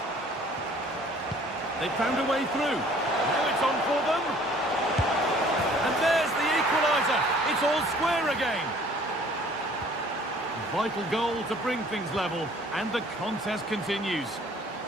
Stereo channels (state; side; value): normal; both; correlation 0.54